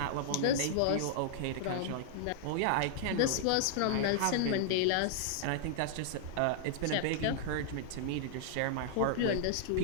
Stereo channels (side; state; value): both; different; correlation -0.01